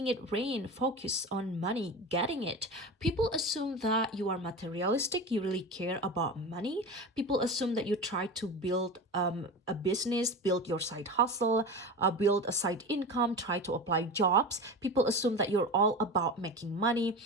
it rain, focus on money, getting it. People assume that you are materialistic. You really care about money. People assume that you try to build a business, build your side hustle, build a side income, try to apply jobs. People assume that you're all about making money.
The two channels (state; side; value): normal; both; correlation 0.28